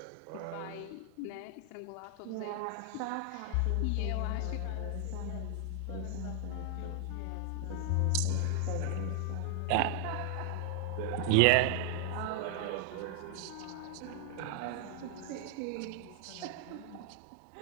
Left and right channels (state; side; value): different; both; correlation 0.00